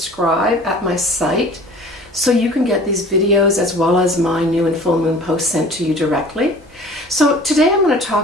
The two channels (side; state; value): both; normal; correlation 0.45